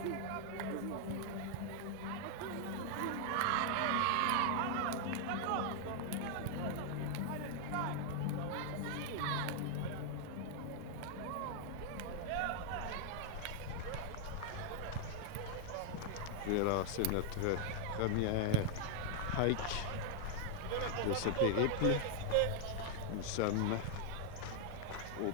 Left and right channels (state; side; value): different; both; correlation 0.00